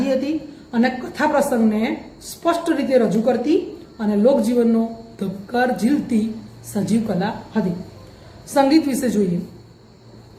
હતી અને કથા પ્રસંગને સ્પષ્ટ રીતે રજૂ કરતી અને લોકજીવનનો ધબકાર ઝીલતી સજીવ કલા હતી. સંગીત વિશે જોઈએ.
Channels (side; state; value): both; identical; correlation 1.00